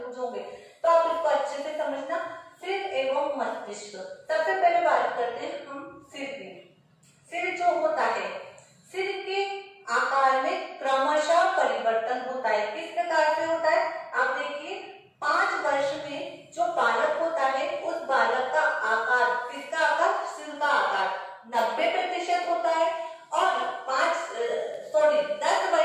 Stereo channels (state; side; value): identical; both; correlation 1.00